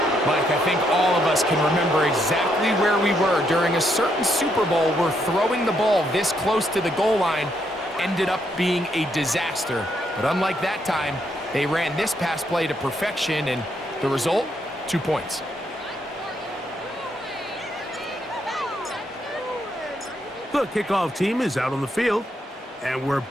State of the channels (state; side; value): normal; both; correlation 0.76